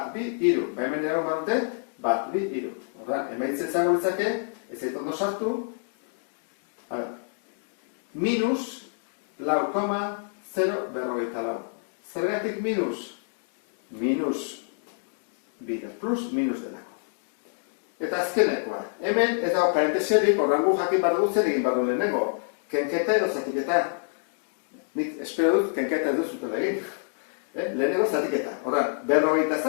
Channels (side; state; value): right; silent; digital silence